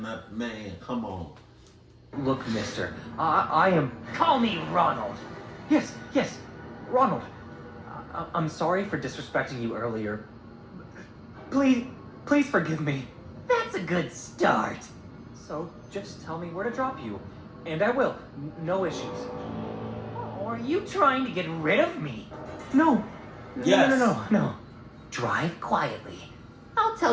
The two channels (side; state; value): both; identical; correlation 1.00